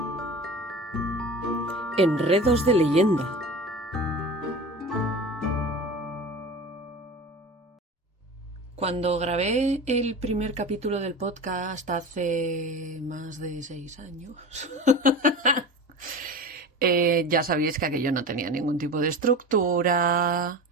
Enredos de leyenda. Cuando grabé el primer capítulo del podcast hace más de 6 años, ya sabéis que aquello no tenía ningún tipo de estructura,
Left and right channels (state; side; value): normal; both; correlation 0.32